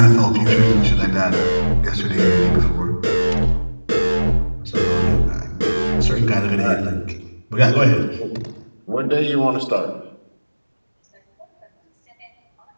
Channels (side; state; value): both; inverted; correlation -1.00